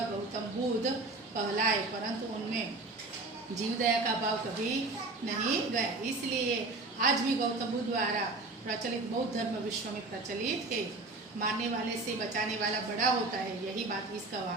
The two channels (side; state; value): left; quieter; 3.3 dB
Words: गौतम बुद्ध कहलाए, परंतु उनमें जीव दया का भाव कभी नहीं गया। इसलिए आज भी गौतम बुद्ध द्वारा प्रचलित बौद्ध धर्म विश्व में प्रचलित है। मारने वाले से बचाने वाला बड़ा होता है, यही बात इस